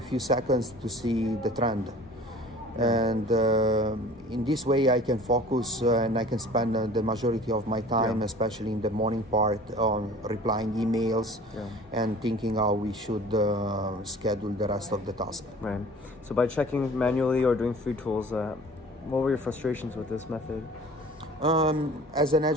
seconds to see the trend. And in this way I can focus and I can spend the majority of my time, especially in the morning part, on replying emails and thinking how we should schedule the rest of the task. Right. So by checking manually or doing free tools, what were your frustrations with this method? As an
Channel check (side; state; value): both; normal; correlation 0.45